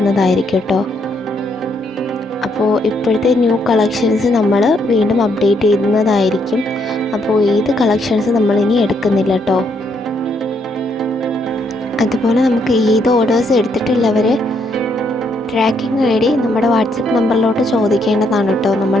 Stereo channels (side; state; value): both; normal; correlation 0.74